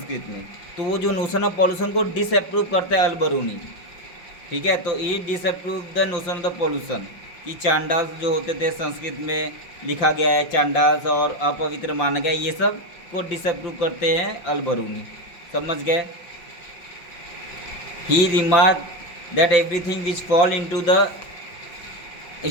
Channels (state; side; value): late; right; 5.8 ms